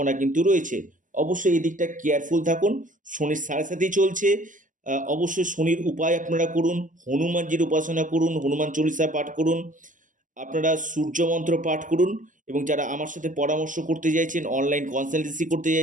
কিন্তু রয়েছে। অবশ্যই এই দিকটা কেয়ারফুল থাকুন। শনির সাড়ে সাথেই চলছে। অবশ্যই শনির উপায় আপনারা করুন, হনুমানজির উপাসনা করুন, হনুমান চল্লিশা পাঠ করুন, আপনারা সূর্য মন্ত্র পাঠ করুন এবং যারা আমার সাথে পরামর্শ করতে চাইছেন, অনলাইন কনসালটেন্সি করতে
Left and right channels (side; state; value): left; late; 0.38 ms